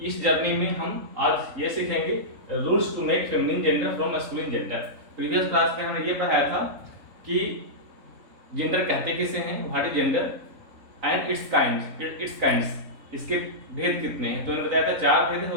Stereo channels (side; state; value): left; late; 3.6 ms